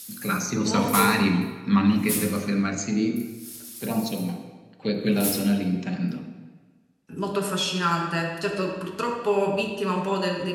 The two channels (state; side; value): identical; both; correlation 1.00